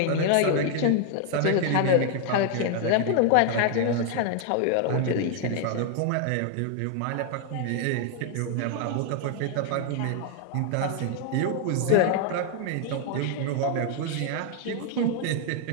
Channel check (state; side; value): different; both; correlation 0.00